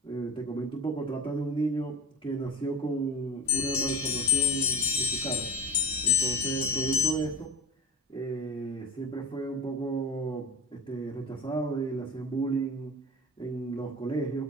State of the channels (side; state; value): both; normal; correlation 0.33